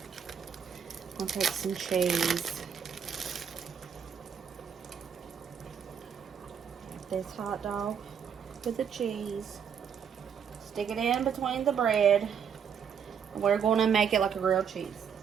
I'll take some cheese. This hot dog with the cheese. Stick it in between the bread. We're going to make it like a grilled cheese.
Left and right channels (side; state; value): left; quieter; 7.5 dB